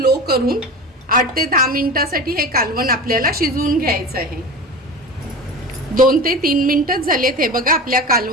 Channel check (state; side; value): normal; both; correlation 0.31